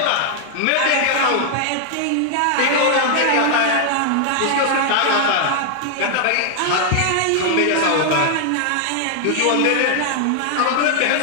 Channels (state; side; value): different; both; correlation 0.00